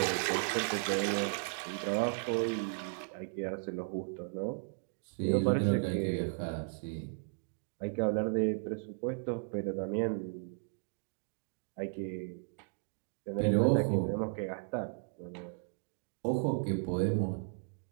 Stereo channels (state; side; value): silent; left; digital silence